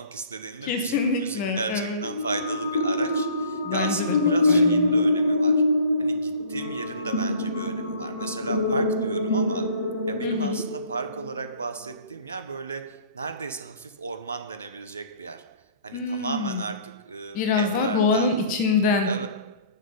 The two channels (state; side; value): inverted; both; correlation -0.50